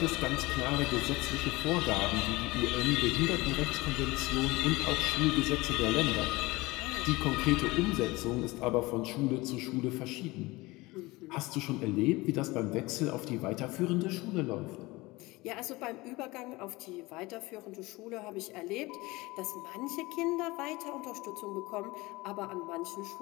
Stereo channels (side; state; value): right; quieter; 21.7 dB